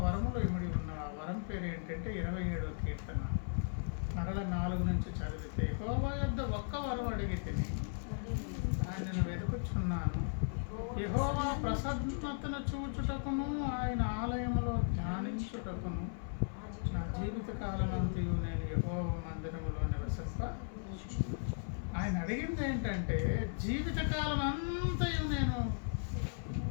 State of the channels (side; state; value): right; silent; 53 dB below the other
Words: వరములో ఇమిడి ఉన్న ఆ వరం పేరు ఏంటంటే 27వ కీర్తన మరల 4 నుంచి చదివితే, యెహోవా యొద్ద ఒక్క వరం అడిగి తిని దానిని వెతుకుచున్నాను, యెహోవా ప్రసన్నతను చూచుటకును ఆయన ఆలయములో ధ్యానించుటకును నా జీవిత కాలమంతయు నేను యెహోవా మందిరములో నివసింప. ఆయన అడిగింది ఏంటంటే, జీవితకాలం అంతయు నేను